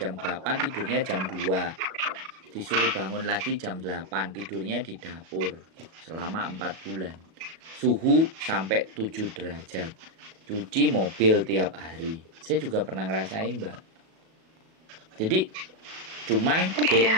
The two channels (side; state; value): left; late; 37 ms